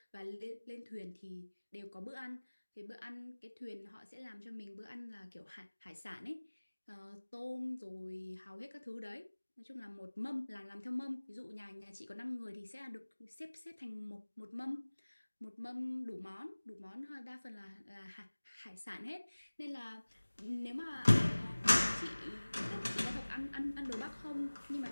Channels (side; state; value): both; inverted; correlation -1.00